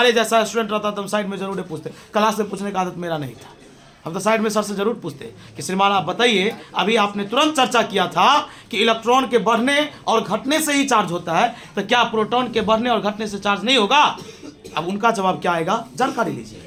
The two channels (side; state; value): both; identical; correlation 1.00